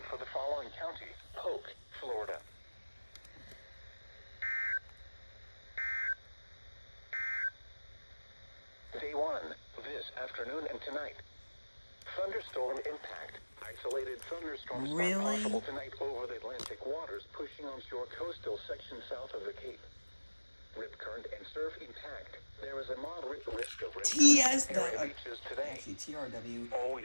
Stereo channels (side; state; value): both; inverted; correlation -1.00